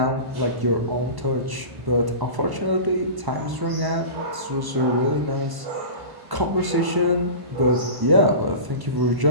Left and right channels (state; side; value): late; left; 1.0 ms